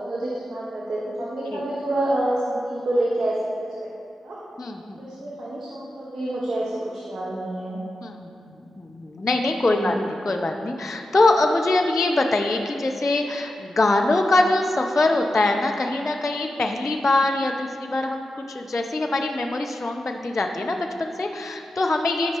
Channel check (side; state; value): both; normal; correlation 0.90